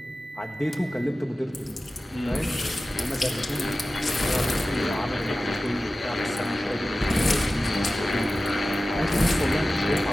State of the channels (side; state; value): both; normal; correlation 0.95